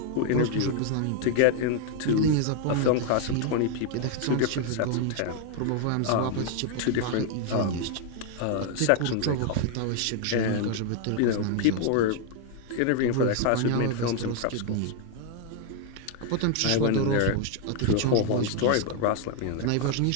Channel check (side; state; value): both; different; correlation 0.01